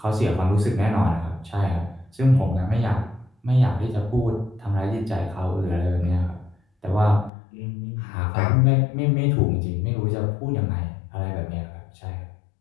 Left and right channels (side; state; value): right; drops out; at 7.3 s